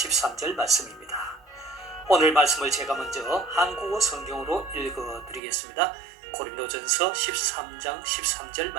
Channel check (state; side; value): drops out; left; at 5.4 s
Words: 말씀입니다. 오늘 말씀을 제가 먼저 한국어 성경으로 읽어드리겠습니다. 고린도전서 13장 13절